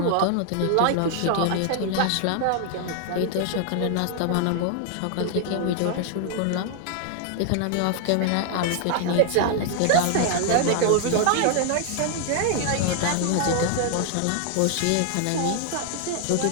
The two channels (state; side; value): different; both; correlation 0.00